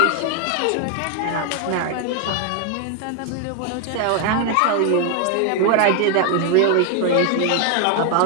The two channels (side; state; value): both; different; correlation 0.01